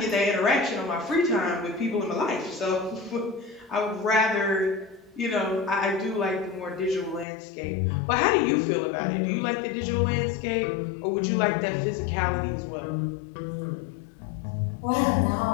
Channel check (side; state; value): right; drops out; at 7.2 s